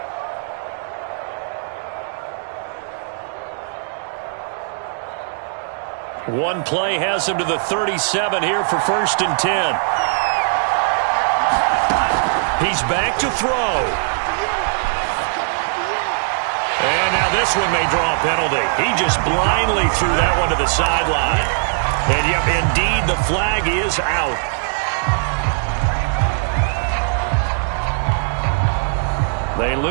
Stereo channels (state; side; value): silent; left; digital silence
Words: One play has him to the 37 here for 1st and 10. He's back to throw. And now this one may draw a penalty. He just blindly threw that one to the sideline. And yep, indeed, the flag is out. They